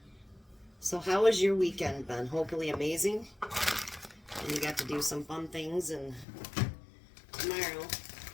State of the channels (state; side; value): drops out; right; at 6.2 s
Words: So how was your weekend, Ben? Hopefully amazing. And you got to do some fun things. And tomorrow,